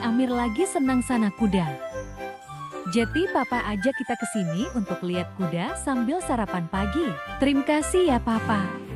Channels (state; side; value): identical; both; correlation 1.00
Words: Amir lagi senang sana kuda. Jadi Papa ajak kita ke sini untuk lihat kuda sambil sarapan pagi. Terima kasih ya Papa.